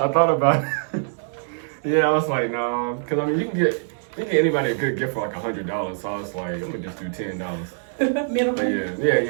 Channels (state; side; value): silent; left; 63 dB below the other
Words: thought about it. Yeah, I was like, no, because I mean, you can get anybody a good gift for like $100. So I was like, I'm gonna just do $10. Minimum. But